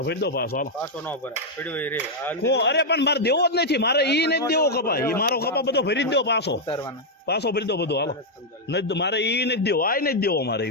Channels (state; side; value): normal; both; correlation -0.02